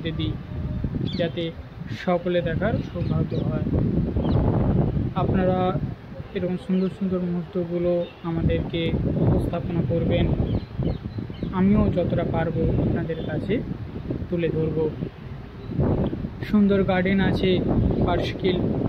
দিই, যাতে সকলে দেখার সৌভাগ্য হয়। আপনারা এরকম সুন্দর সুন্দর মুহূর্তগুলো আমাদেরকে উপস্থাপনা করবেন, আমিও যতটা পারবো আপনাদের কাছে তুলে ধরব। সুন্দর গার্ডেন আছে পার্শিখিল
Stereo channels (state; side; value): identical; both; correlation 1.00